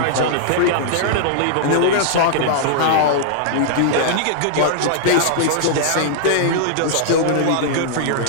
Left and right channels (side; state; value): both; different; correlation -0.01